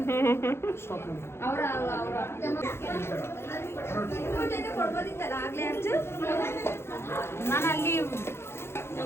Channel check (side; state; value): right; late; 0.12 ms